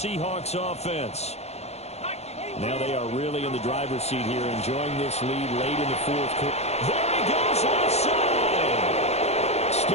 offense. Now they are really in the driver's seat here, enjoying this lead late in the fourth quarter. There he goes, left side.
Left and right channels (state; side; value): late; right; 0.31 ms